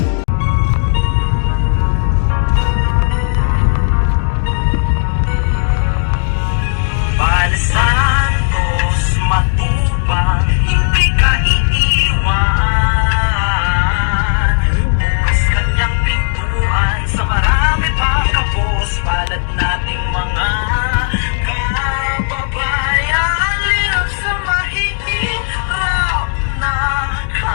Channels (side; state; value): right; silent; 60 dB below the other